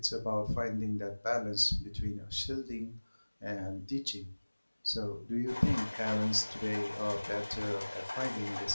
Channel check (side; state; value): both; inverted; correlation -1.00